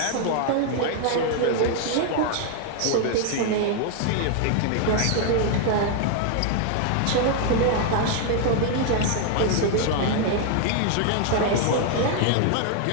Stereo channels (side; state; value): both; different; correlation 0.00